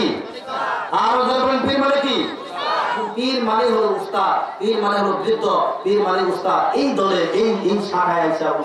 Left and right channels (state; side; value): identical; both; correlation 1.00